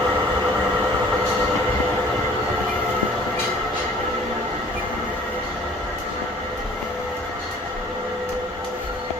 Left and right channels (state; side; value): normal; both; correlation 0.52